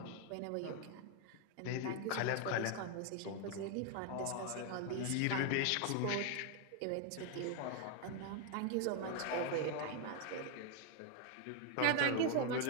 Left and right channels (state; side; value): different; both; correlation 0.00